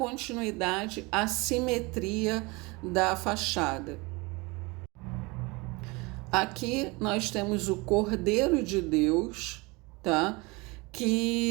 à simetria da fachada. Aqui nós temos o Cordeiro de Deus, tá?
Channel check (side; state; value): left; quieter; 25.5 dB